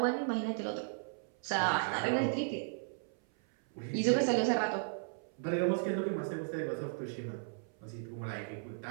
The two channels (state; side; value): silent; left; 54 dB below the other